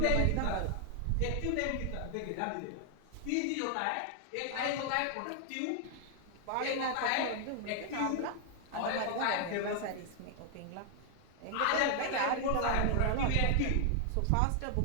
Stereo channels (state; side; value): different; both; correlation 0.00